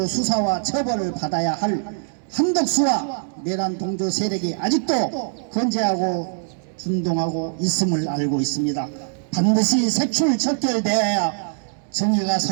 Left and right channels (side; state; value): left; silent; 64 dB below the other